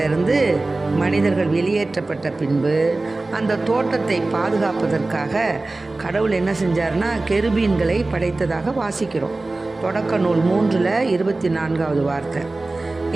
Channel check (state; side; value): quieter; left; 3.2 dB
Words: மனிதர்கள் வெளியேற்றப்பட்ட பின்பு அந்த தோட்டத்தை பாதுகாப்பதற்காக கடவுள் என்ன செஞ்சார்னா கெருபீன்களை படைத்ததாக வாசிக்கிறோம். தொடக்க நூல் 3:24 வார்த்தை.